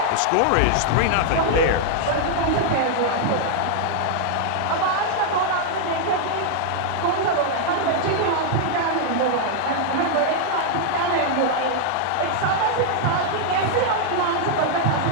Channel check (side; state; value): both; different; correlation 0.00